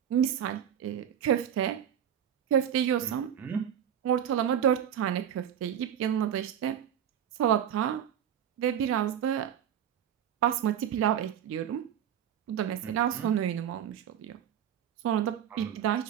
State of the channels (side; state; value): left; quieter; 9.5 dB